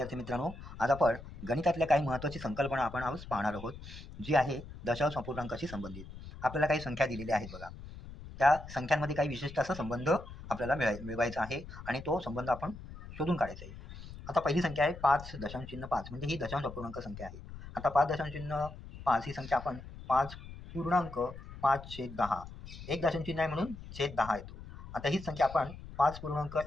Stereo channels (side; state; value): left; noise; rumble, 13 dB below the sound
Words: मित्रांनो, आज आपण गणितातल्या काही महत्त्वाची संकल्पना आपण आज पाहणार आहोत, जी आहे दशांश अपूर्णांकाशी संबंधित. आपल्याला काही संख्या दिलेल्या आहेत बघा. त्या संख्यांमध्ये काही विशिष्ट असा संबंध आपल्याला मिळवायचा आहे आणि तो संबंध आपण शोधून काढायचा आहे. आता पहिली संख्या आहे 5.5 म्हणजे ही दशांश अपूर्णांक संख्या आहे. आता 5.5 ही संख्या आपण 5.5/10 एक दशांश चिन्ह आहे म्हणून छेद 10 येतो. आता हीच संख्या आपण